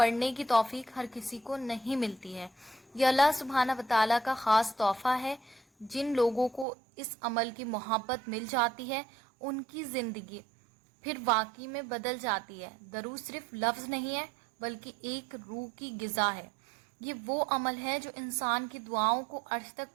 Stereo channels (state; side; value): drops out; left; at 6.7 s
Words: کی توفیق ہر کسی کو نہیں ملتی ہے۔ یہ اللہ سبحانہ وتعالی کا خاص تحفہ ہے۔ جن لوگوں کو اس عمل کی محبت مل جاتی ہے، ان کی زندگی پھر واقعی میں بدل جاتی ہے۔ درود صرف لفظ نہیں ہے، بلکہ ایک روح کی غذا ہے۔ یہ وہ عمل ہے جو انسان کی دعاؤں کو عرش تک